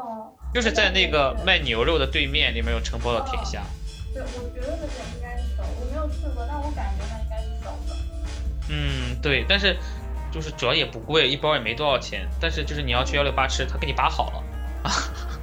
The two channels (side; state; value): both; identical; correlation 1.00